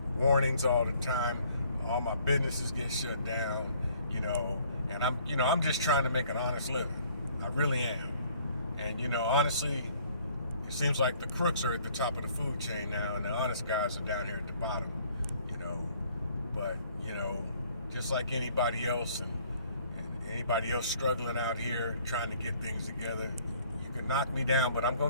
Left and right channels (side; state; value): both; inverted; correlation -0.60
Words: warnings all the time. All my businesses get shut down, and I'm just trying to make an honest living. I really am. And, honestly, it seems like the crooks are at the top of the food chain now, and the honest guys are down here at the bottom, But, just like anybody else, and anybody else struggling out here trying to get things together, you can knock me down, but I'm